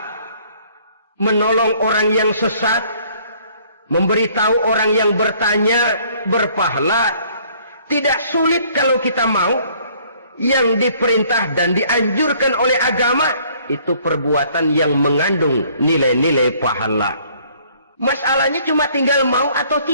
menolong orang yang sesat, memberitahu orang yang bertanya berpahala. Tidak sulit kalau kita mau. Yang diperintah dan dianjurkan oleh agama itu perbuatan yang mengandung nilai-nilai pahala. Masalahnya cuma tinggal mau atau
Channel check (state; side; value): inverted; both; correlation -0.60